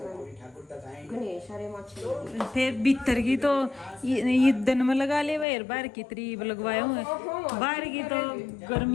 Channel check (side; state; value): right; drops out; at 5.5 s